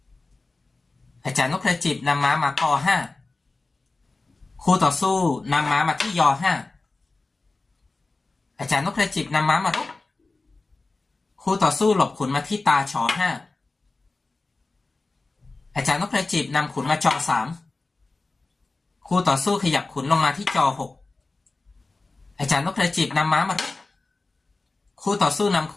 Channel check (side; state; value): right; quieter; 3.5 dB